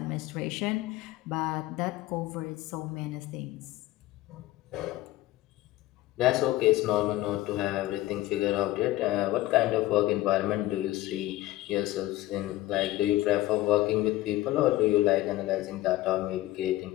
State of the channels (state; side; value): quieter; right; 16.5 dB